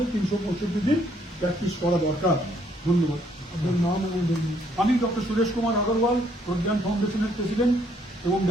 365 দিন প্র্যাকটিস করা দরকার। ধন্যবাদ। আপনার নাম এবং আমি ডক্টর সুরেশ কুমার আগরওয়াল, প্রজ্ঞান ফাউন্ডেশনের প্রেসিডেন্ট এবং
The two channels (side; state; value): both; normal; correlation 0.68